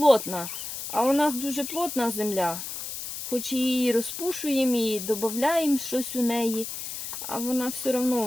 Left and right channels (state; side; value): noise; left; hiss, 7 dB below the sound